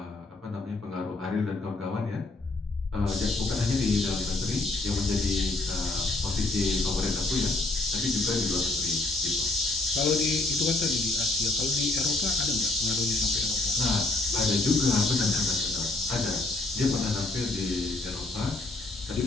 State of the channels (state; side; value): quieter; right; 3.1 dB